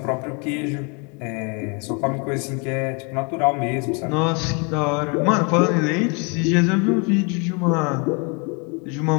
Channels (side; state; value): right; quieter; 32.6 dB